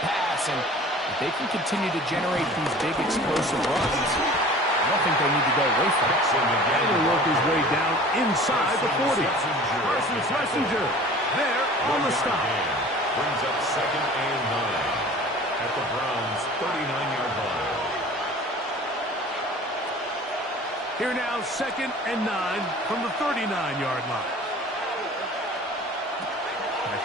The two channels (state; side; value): normal; both; correlation 0.44